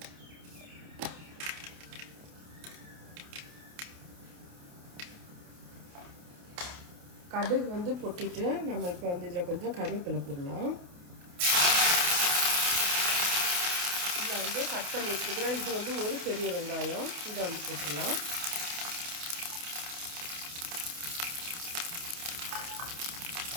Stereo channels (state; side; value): late; left; 28 ms